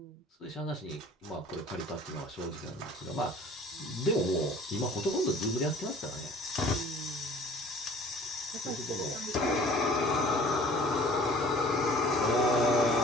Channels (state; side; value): normal; both; correlation 0.49